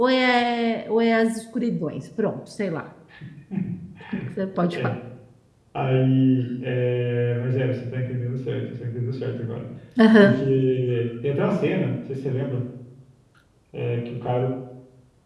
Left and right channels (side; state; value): both; identical; correlation 1.00